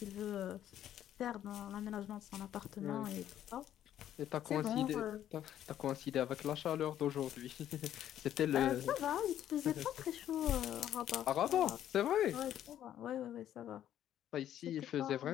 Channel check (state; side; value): quieter; right; 11.2 dB